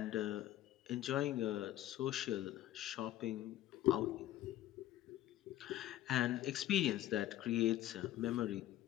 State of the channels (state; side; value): quieter; right; 13.7 dB